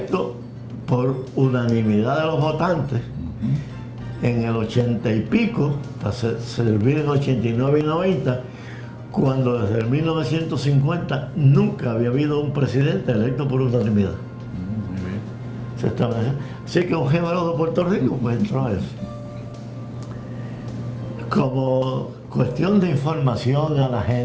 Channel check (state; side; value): identical; both; correlation 1.00